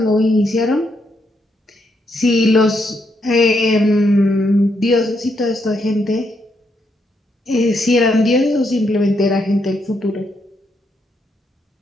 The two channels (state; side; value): normal; both; correlation 0.78